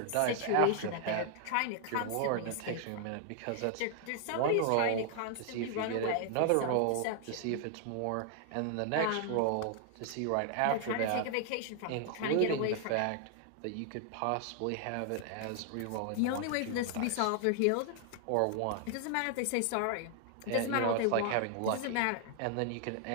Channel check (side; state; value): both; different; correlation 0.00